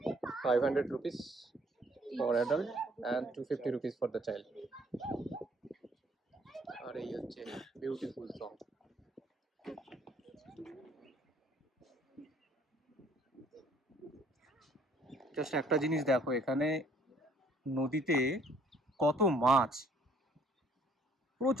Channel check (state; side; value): normal; both; correlation 0.61